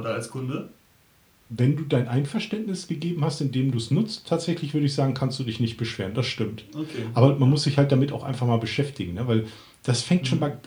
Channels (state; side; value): identical; both; correlation 1.00